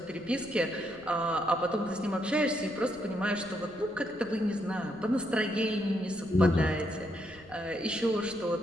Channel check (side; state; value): left; noise; rumble, 24 dB below the sound